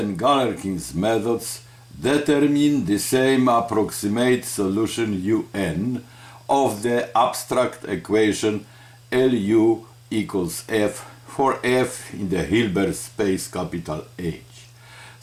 Galerkin's methods determine the same approximate solution UN of the abstract equation Lu equals F for F in the Hilbert space capital H,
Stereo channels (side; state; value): both; identical; correlation 1.00